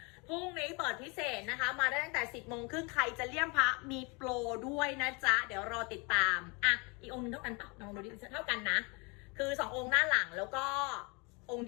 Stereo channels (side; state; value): right; quieter; 29.8 dB